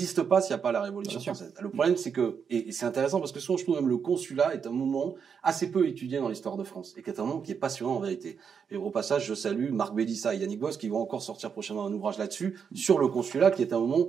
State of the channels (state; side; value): quieter; left; 6.7 dB